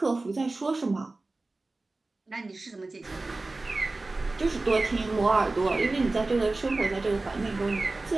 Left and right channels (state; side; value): quieter; left; 3.2 dB